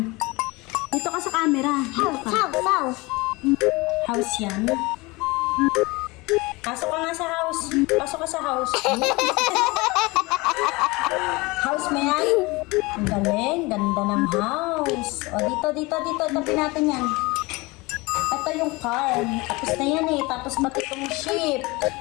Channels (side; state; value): right; quieter; 23.9 dB